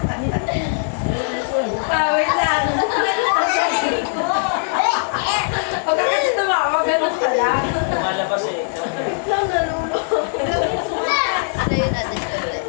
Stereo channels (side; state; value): right; silent; digital silence